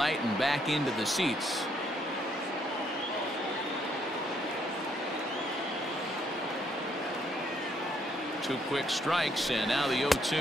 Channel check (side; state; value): both; normal; correlation 0.71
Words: and back into the seats. Two quick strikes, and now the